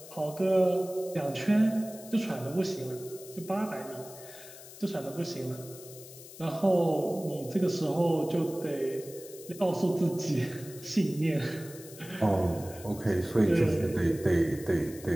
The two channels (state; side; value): noise; left; hiss, 17 dB below the sound